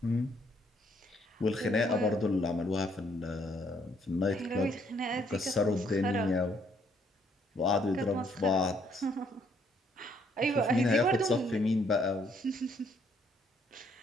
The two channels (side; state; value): both; normal; correlation 0.68